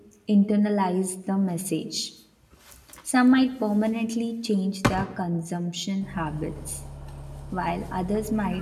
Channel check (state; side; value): identical; both; correlation 1.00